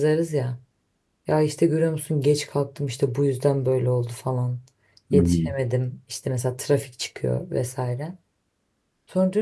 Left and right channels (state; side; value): identical; both; correlation 1.00